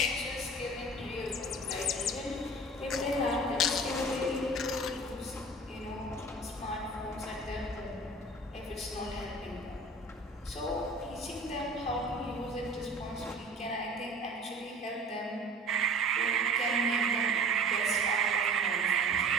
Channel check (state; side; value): normal; both; correlation 0.42